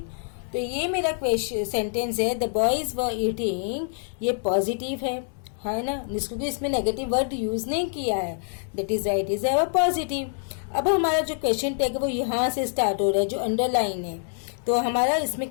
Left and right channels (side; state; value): right; silent; 61 dB below the other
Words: तो ये मेरा क्वेश्चन सेंटेंस है, द बॉयज वर ईटिंग, ये पॉजिटिव है ना, क्योंकि इसमें नेगेटिव वर्ड यूज नहीं किया है, that is right, is our positive. अब हमारा जो क्वेश्चन टैग है वो यहाँ से स्टार्ट हो रहा है, जो अंडरलाइन है। तो हमारा इसमें